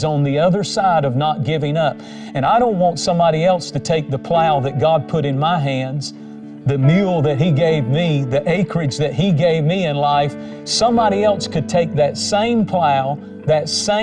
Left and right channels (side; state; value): both; identical; correlation 1.00